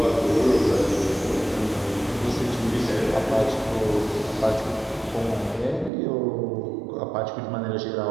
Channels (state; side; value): drops out; left; at 5.9 s